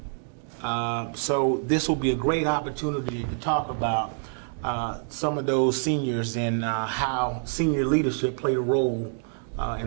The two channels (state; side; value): silent; left; digital silence